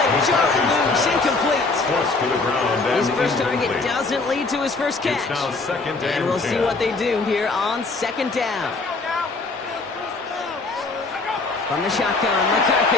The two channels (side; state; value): right; quieter; 3.7 dB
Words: to Charlie loose, incomplete. Forced to the ground and His first target incomplete. doesn't lead to his first catch. It's now second And we'll see what they do here on second down. From the shotgun,